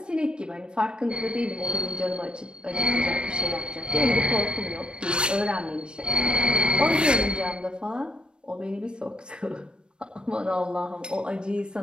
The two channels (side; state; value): left; late; 0.054 ms